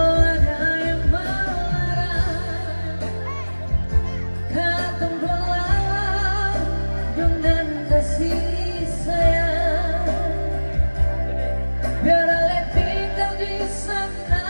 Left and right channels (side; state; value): both; inverted; correlation -1.00